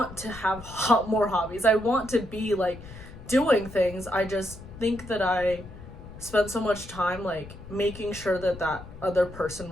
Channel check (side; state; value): left; noise; rumble, 15 dB below the sound